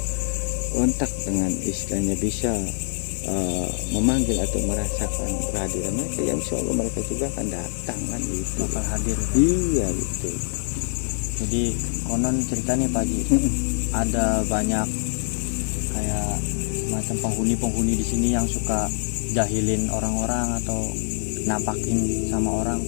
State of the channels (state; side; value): silent; right; digital silence